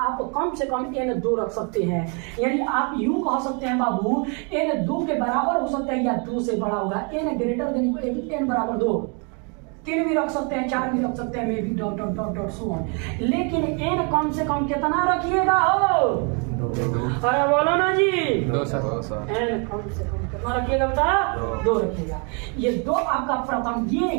आप कम से कम n 2 रख सकते हैं। यानी आप यूं कह सकते हैं बाबू n 2 के बराबर हो सकता है या 2 से बड़ा होगा। n ग्रेटर देन n बराबर 2, 3 भी रख सकते हैं, 4 भी रख सकते हैं, may be dot dot dot dot so on. लेकिन n कम से कम कितना रखिएगा हो? अरे बोलो ना जी, 2 सर। n कम से कम कितना रखिएगा बता? 2 रखिएगा। ये 2 आपका प्रथम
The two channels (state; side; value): quieter; left; 35.8 dB